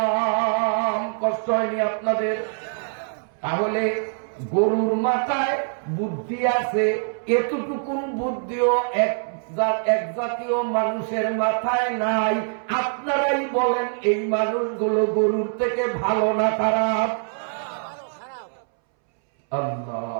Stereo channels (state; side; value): silent; left; 63 dB below the other